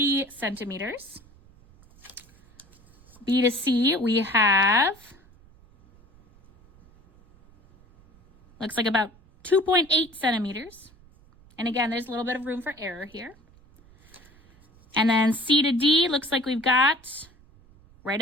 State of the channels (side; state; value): right; noise; rumble, 27 dB below the sound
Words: centimeters. B to C, we have, looks like about 2.8 centimeters. And again, there's a little bit of room for error here. And then C to D, looks like we've got right